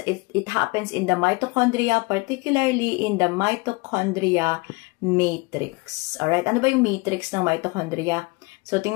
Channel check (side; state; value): right; quieter; 26.7 dB